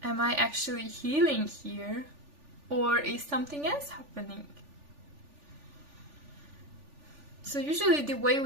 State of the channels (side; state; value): left; late; 3.4 ms